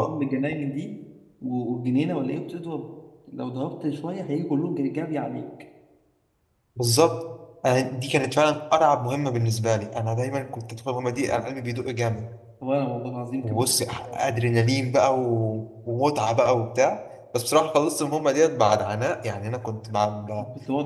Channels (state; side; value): identical; both; correlation 1.00